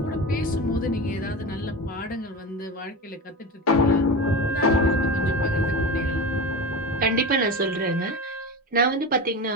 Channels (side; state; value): both; normal; correlation 0.25